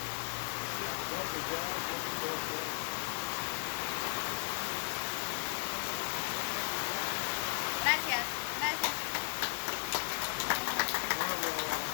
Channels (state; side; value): silent; right; 54 dB below the other